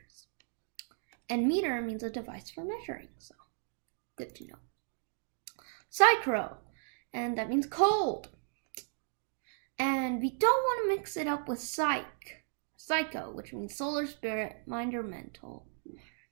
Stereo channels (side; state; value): left; silent; digital silence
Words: And meter means a device for measuring, so good to know. Psychro, and that means cold. And we don't want to mix it up with psycho, which means solar, spirit, mind, or mental.